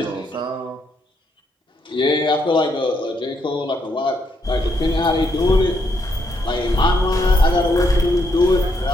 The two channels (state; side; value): normal; both; correlation 0.76